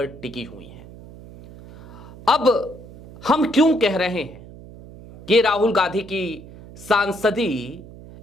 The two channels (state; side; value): noise; right; hum, 18 dB below the sound